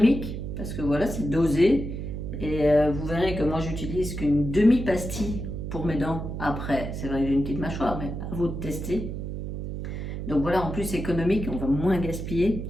parce que voilà, c'est dosé. Et vous verrez que moi j'utilise qu'une demi-pastille pour mes dents. Après, c'est vrai que j'ai une petite mâchoire, mais à vous de tester. Donc voilà, en plus économique, on va moins gaspiller,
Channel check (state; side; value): noise; right; hum, 5 dB below the sound